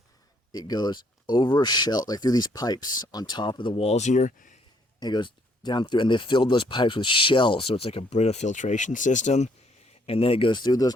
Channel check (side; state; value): both; normal; correlation 0.67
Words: it goes over a shell, like through these pipes on top of the walls here. And it goes down through, and they filled those pipes with shells, so it's like a Brita filtration system. And then it goes through